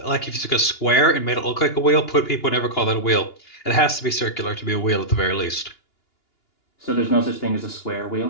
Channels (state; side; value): late; right; 2.9 ms